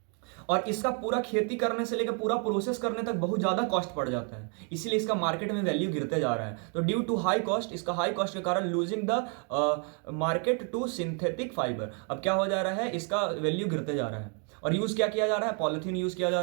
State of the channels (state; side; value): quieter; left; 39.4 dB